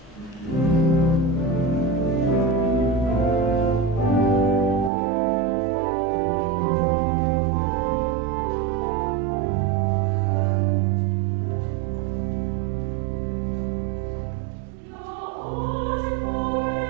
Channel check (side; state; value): left; drops out; at 4.9 s